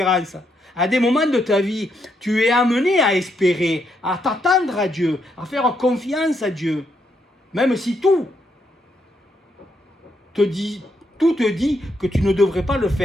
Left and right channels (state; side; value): normal; both; correlation 0.78